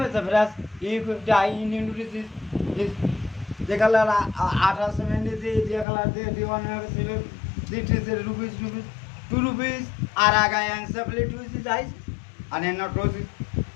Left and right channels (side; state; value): right; drops out; at 5.9 s